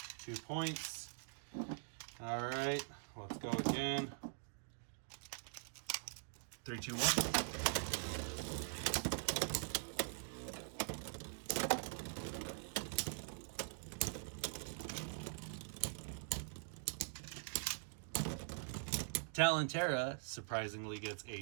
2 points. All right, let's go again. 3, 2, 1. Talon Terra surprisingly gets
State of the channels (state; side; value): silent; left; digital silence